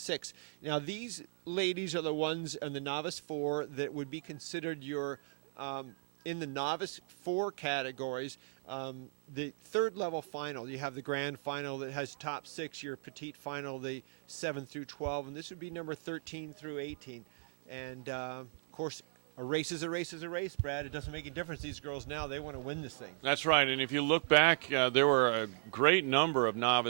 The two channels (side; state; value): left; silent; digital silence